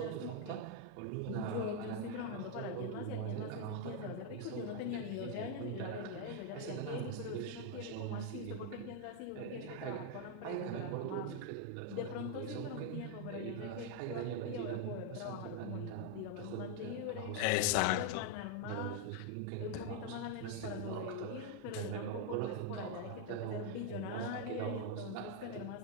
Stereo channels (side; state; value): both; different; correlation 0.01